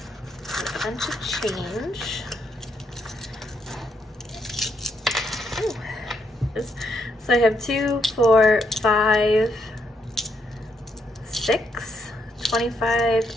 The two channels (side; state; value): both; normal; correlation 0.76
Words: A bunch of change. Ooh. So I have 2, 4, 5, 6, 25,